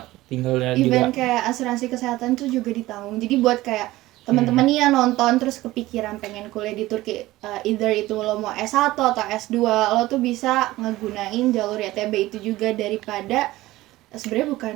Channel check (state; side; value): quieter; left; 17.5 dB